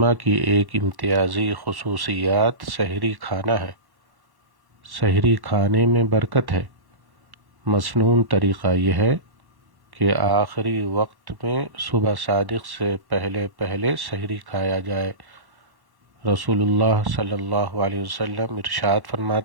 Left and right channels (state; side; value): late; left; 1.1 ms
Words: کی ایک امتیازی خصوصیات سحری کھانا ہے۔ سحری کھانے میں برکت ہے۔ مسنون طریقہ یہ ہے کہ آخری وقت میں صبح صادق سے پہلے سحری کھایا جائے۔ رسول اللہ صلی اللہ علیہ وسلم ارشاد